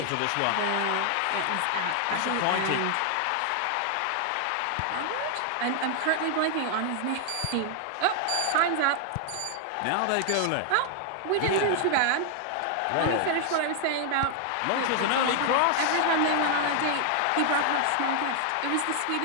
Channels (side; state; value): both; different; correlation 0.00